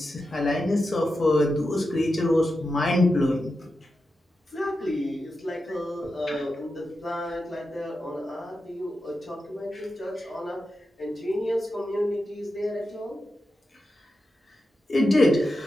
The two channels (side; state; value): both; normal; correlation 0.90